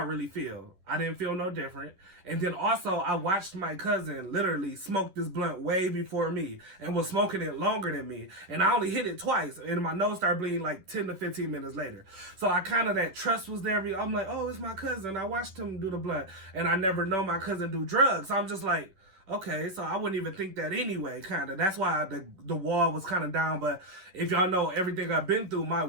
really feel? I didn't feel no different. And then also, I watched my cousin literally smoke this blunt way before me and was smoking it longer than me. And I only hit it twice, and my nose started bleeding like 10 to 15 minutes later. So I kind of, that trust was there. I'm like, oh, it's my cousin. I watched him do the blunt. And I never know my cousin do drugs. So I'm just like, okay, so I wouldn't even think that anyway, kind of. That's why the wall was kind of down. But if y'all know everything I've been through, my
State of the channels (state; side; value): late; left; 10 ms